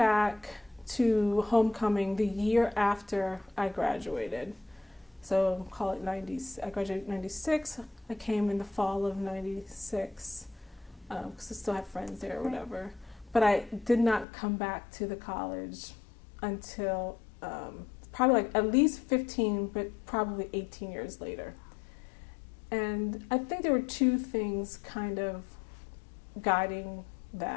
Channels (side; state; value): right; drops out; at 14.2 s